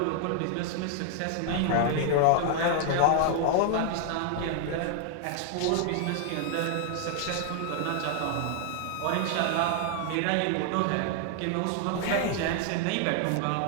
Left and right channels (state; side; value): different; both; correlation 0.00